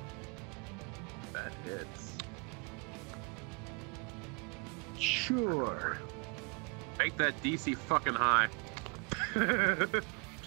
That hits. Sure. Make that DC fucking high.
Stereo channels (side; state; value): left; quieter; 32.4 dB